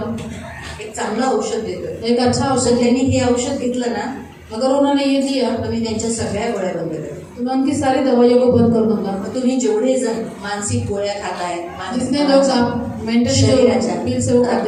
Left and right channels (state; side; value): identical; both; correlation 1.00